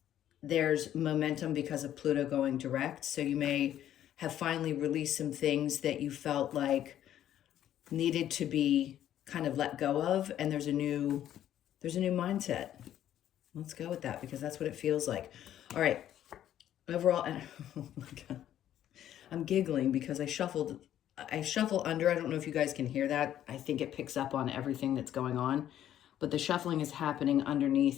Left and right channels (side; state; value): right; quieter; 11.4 dB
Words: there's momentum because of Pluto going direct. So you may have finally released some things that you felt like needed to be kind of let go of, and there's a new mindset. Let's go with that, because that's what it feels like. All right. Overall, oh my God. I'm giggling because I shuffle under. I don't know if you guys can hear that. I think it picks up on everything that's going on, but the shuffling is happening